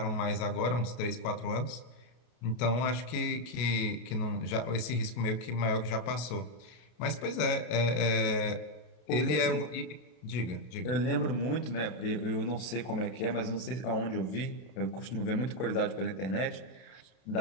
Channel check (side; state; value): right; late; 33 ms